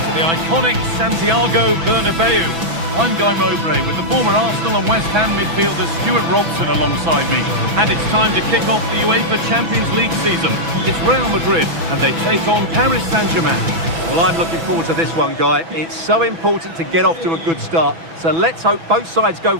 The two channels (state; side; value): late; left; 6.1 ms